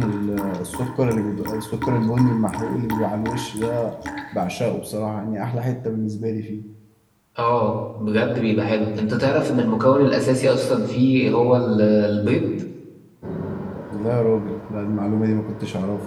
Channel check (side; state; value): both; identical; correlation 1.00